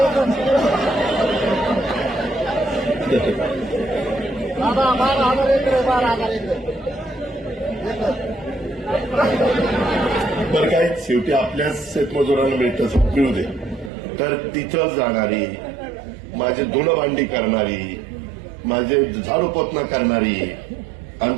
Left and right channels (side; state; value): left; drops out; at 13.9 s